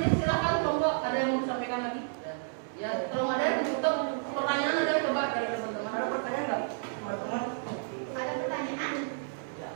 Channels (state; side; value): silent; left; digital silence